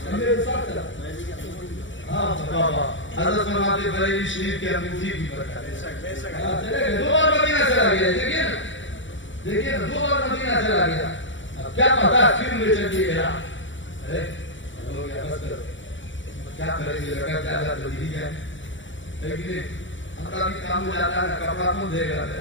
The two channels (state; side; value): late; right; 0.55 ms